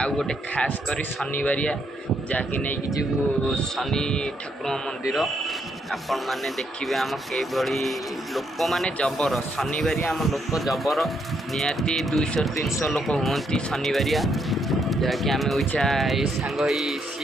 ଗୋଟେ ଖାସ୍ କରି ଶନିବାରିଆ ଯାହାକି ନେଇକି ଯିବୁ ଶନି ଠାକୁରଙ୍କ ମନ୍ଦିର। ଆପଣମାନେ ଦେଖିବେ ଆମ କିଭଳି ଲୋକମାନେ ଜବର। ଶନିବାରିଆ ଆମ ଲୋକ ଜବର, ନିହାତି 200-300 ଲୋକ ହୁଅନ୍ତି ଶନିବାରିଆ। ଯାହାକି ଆମେ ଓଇଛା ଏଇ ସାଙ୍ଗ ହେଇ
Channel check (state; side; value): normal; both; correlation 0.75